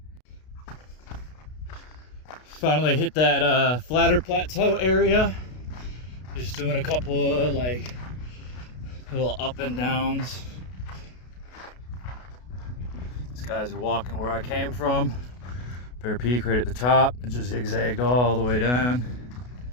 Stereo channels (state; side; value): late; right; 32 ms